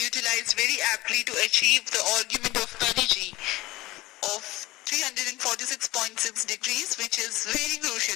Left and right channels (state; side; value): quieter; right; 19.2 dB